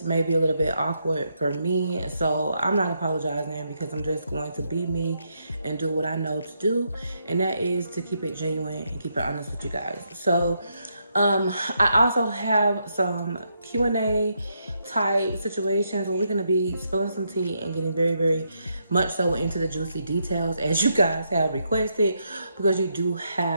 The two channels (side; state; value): both; inverted; correlation -0.79